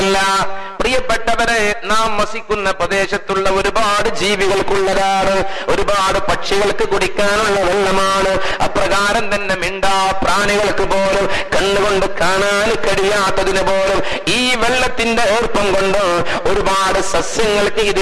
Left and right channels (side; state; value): both; identical; correlation 1.00